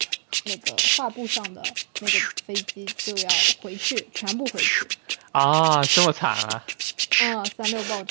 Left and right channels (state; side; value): silent; left; digital silence